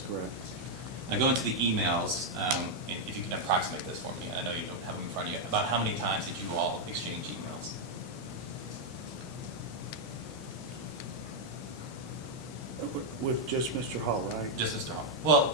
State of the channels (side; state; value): both; normal; correlation -0.01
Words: correct. Now go into the emails, and if you can approximate this for me, I know you don't have them in front of you, about how many times did you all exchange emails? With just Mr. Hall, right? Just Mr. Hall?